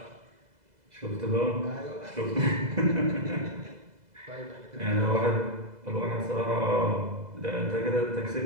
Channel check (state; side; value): late; left; 2.0 ms